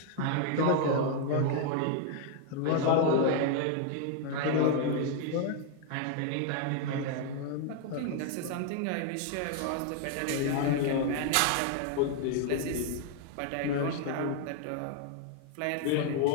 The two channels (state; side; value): different; both; correlation 0.00